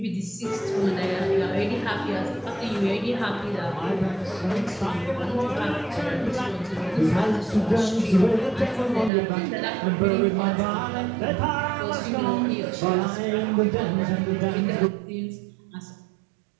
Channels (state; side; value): drops out; left; at 9.1 s